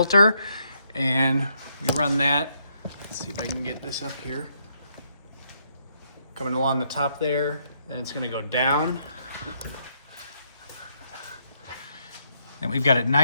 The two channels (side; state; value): both; inverted; correlation -0.74